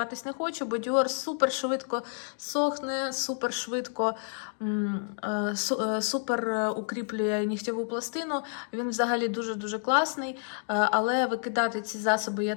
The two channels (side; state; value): right; silent; 58 dB below the other